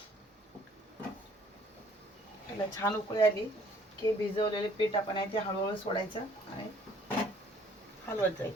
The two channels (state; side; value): normal; both; correlation 0.58